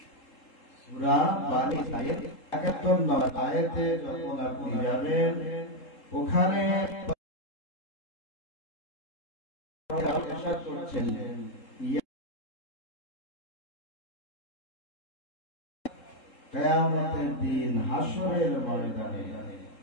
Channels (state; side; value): late; right; 3.7 ms